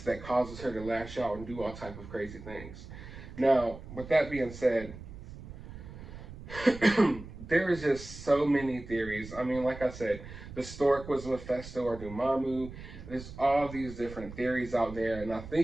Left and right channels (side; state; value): right; noise; rumble, 13 dB below the sound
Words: that causes her to lash out and do all type of crazy things. Now, with that being said, there is just so many theories. I mean, like I said, the stork was Mephisto or Dormammu. There's all these different theories out there, and I